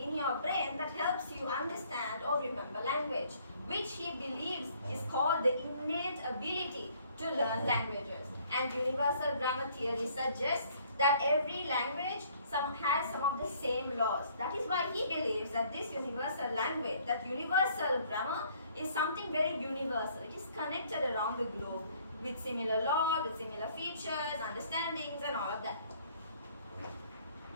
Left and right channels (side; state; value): both; inverted; correlation -0.61